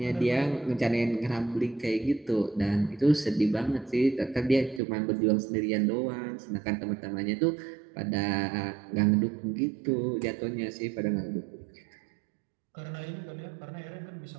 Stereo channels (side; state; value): left; drops out; at 4.8 s